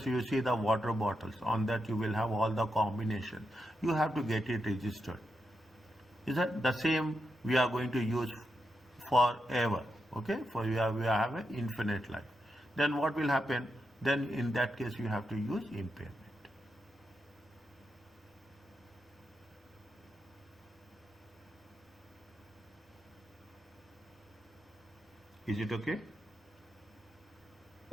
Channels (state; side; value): normal; both; correlation 0.86